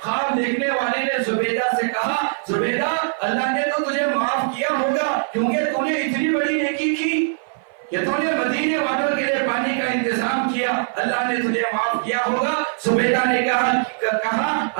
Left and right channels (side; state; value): left; silent; 59 dB below the other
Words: خواب دیکھنے والے نے زبیدہ سے کہا زبیدہ اللہ نے تو تجھے معاف کیا ہوگا کیونکہ تو نے اتنی بڑی نیکی کی کہ تو نے مدینے والوں کے لیے پانی کا انتظام کیا، اللہ نے تجھے معاف کیا ہوگا۔ زبیدہ نے کہا